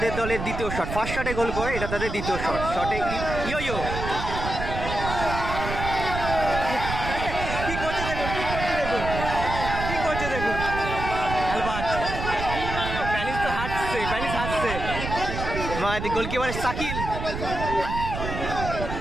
দলের দ্বিতীয় শট। ফার্স্ট শটে গোল করে, এটা তাদের দ্বিতীয় শট। শটে ইয়ো ইয়ো কি করছে দেখুন, কি করছে দেখুন অ্যালবার্ট। প্যানিস তো হাঁটছে, প্যানিস হাঁটছে। গোলকিপার সাকিল,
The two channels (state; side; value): noise; right; rumble, 5 dB below the sound